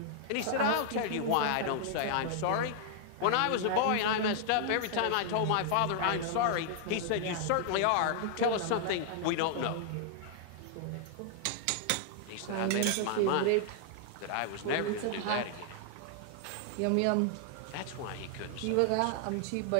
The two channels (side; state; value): both; different; correlation -0.01